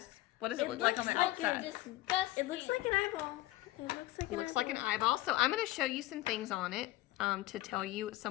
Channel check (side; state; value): right; quieter; 16.9 dB